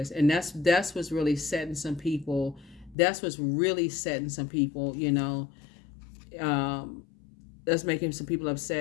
And that's what's really setting some people. That's what's really setting some people, you know. That's making some people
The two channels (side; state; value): right; drops out; at 3.0 s